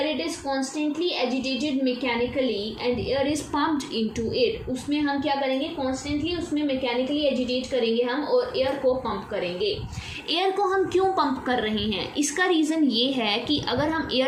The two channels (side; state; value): both; identical; correlation 1.00